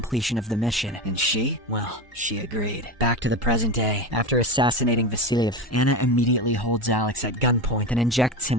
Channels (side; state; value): both; normal; correlation 0.21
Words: of the mission, and she agreed. Back to the present day. After assassinating Vasilyev, Anna immediately holds Alex at gunpoint and injects him